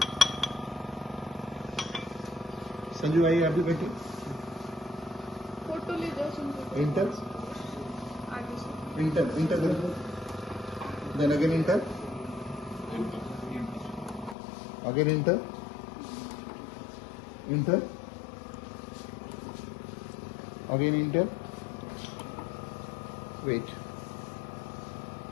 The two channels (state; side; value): drops out; right; at 14.4 s